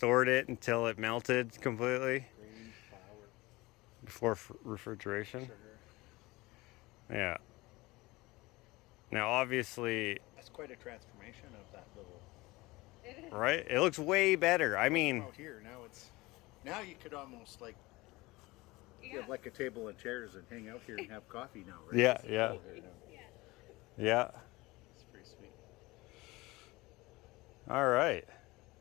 it until it melted completely Grain, flour, before refrigeration. sugar. Yeah. Now, obviously, That's quite a transformation of that little. It is. right? It looks way better. I mean, Out here now now you could almost like Yeah. have like a table and chairs and hang out here and have coffee now, right? Yeah, It's yeah. cool here now. yeah. It's pretty sweet. All right.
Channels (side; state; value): right; quieter; 21.3 dB